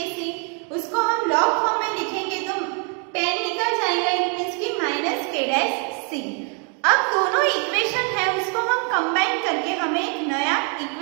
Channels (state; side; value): quieter; left; 37.9 dB